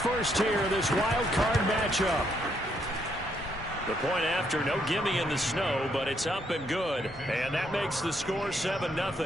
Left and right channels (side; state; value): both; normal; correlation 0.74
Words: here, this wild card matchup. The point after, no gimme in the snow, but it's up and good. And that makes the score